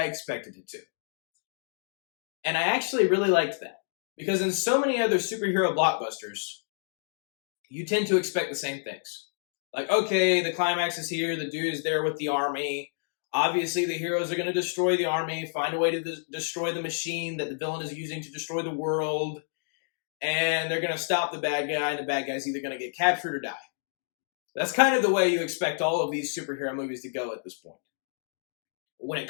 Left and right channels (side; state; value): right; silent; digital silence